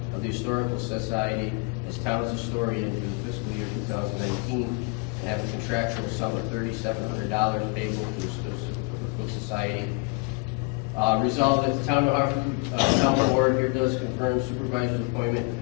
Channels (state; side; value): quieter; right; 31.5 dB